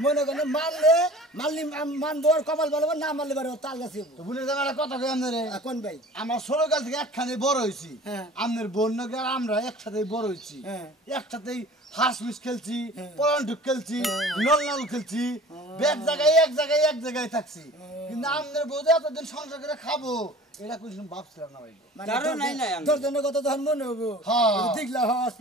মনে করেন মারলে মারলি মানবো আর কপাল বলবো না মারলি বারে তাল গাছ তো বলে দেব একটা কথা কই আপনারে কোন ভাই আমার ছোটকাল থেকে একখানে বড় হইছি হ্যাঁ। আমাদের বন্যকে আর আমরা একসাথেই বড় হইছি হ্যাঁ। একসাথেই হাঁস মিস খেলছি পলান্টুক খেলছি নল নল খেলছি এক জায়গায় থাকছি কিন্তু আমাদের বউতে এতদিন সংসার করে খাবো এটা কোনো ভাবছিলাম না ভাই কারণ নাই নাই আমি তোর জন্য কত তখন মনে হবো হ্যাঁ। দেখলা হস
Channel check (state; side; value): normal; both; correlation 0.43